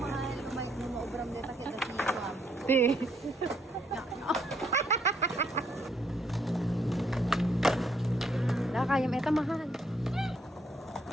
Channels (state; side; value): normal; both; correlation 0.71